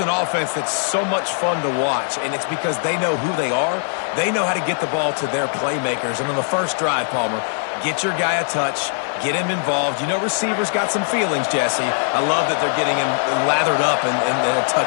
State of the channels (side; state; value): right; silent; digital silence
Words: offense that's so much fun to watch, and it's because they know who they are. They know how to get the ball to their playmakers. And on the first drive, Palmer, get your guy a touch, get him involved. You know receivers got some feelings, Jesse. I love that they're getting him lathered up and a